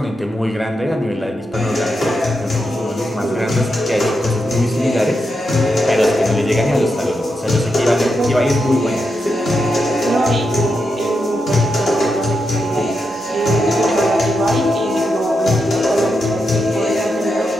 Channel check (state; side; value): normal; both; correlation 0.85